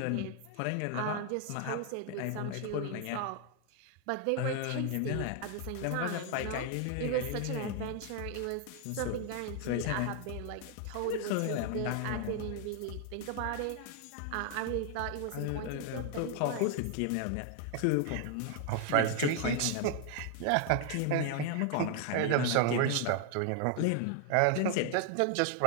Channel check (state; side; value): different; both; correlation 0.00